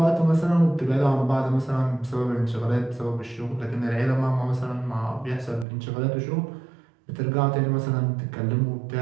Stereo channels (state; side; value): drops out; left; at 5.7 s